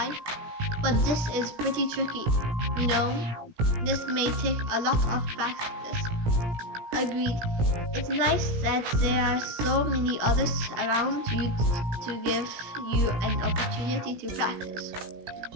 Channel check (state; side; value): late; left; 17 ms